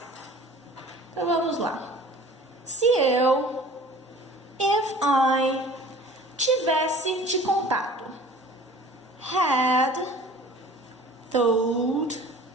Então vamos lá. Se eu, if I, tivesse te contado, had told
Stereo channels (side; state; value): both; normal; correlation 0.46